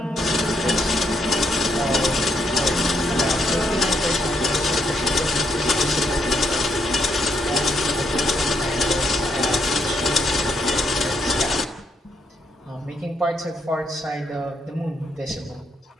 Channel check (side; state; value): both; normal; correlation 0.76